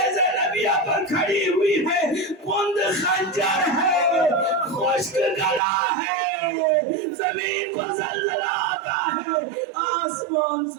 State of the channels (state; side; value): drops out; left; at 5.6 s